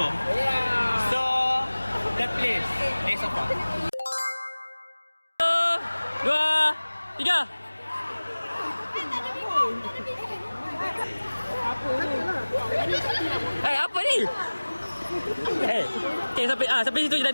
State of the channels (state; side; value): inverted; both; correlation -1.00